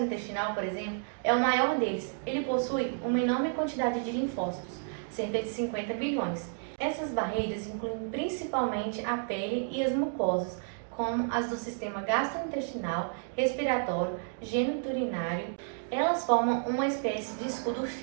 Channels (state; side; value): silent; left; digital silence